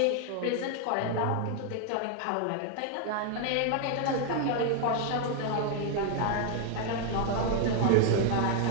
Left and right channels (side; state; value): both; different; correlation 0.00